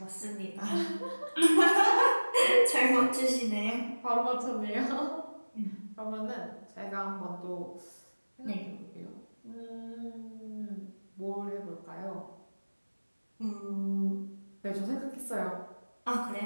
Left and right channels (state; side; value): inverted; both; correlation -1.00